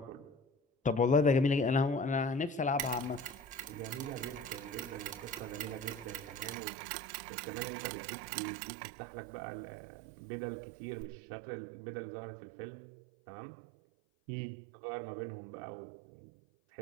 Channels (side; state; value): left; drops out; at 6.6 s